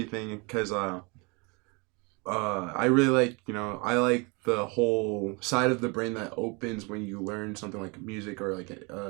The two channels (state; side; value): quieter; left; 29.4 dB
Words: because I really like, I like the whole side of the brain that opens when you learn something like music or like